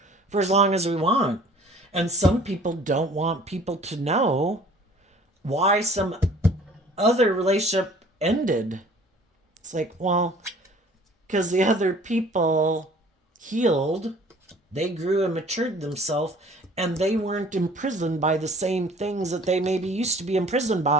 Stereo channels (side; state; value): both; normal; correlation 0.51